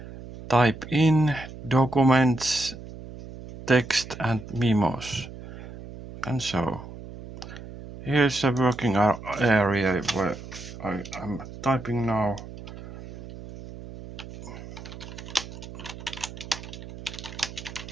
type in documents, text and memos. And so, here's a working area where I am typing now.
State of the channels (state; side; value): noise; right; hum, 13 dB below the sound